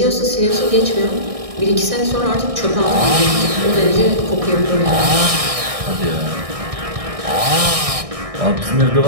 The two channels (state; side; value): late; left; 1.6 ms